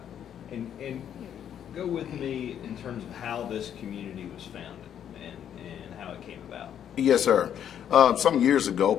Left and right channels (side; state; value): right; quieter; 9.5 dB